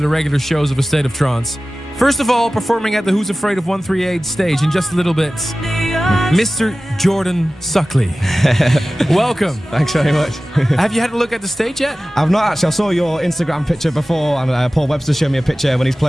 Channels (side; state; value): both; normal; correlation 0.96